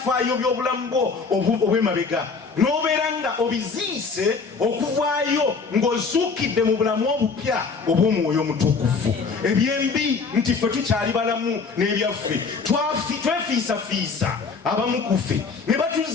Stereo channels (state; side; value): quieter; right; 4.8 dB